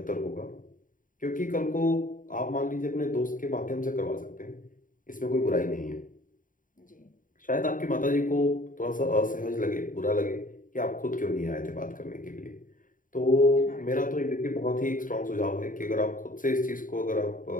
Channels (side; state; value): right; late; 0.39 ms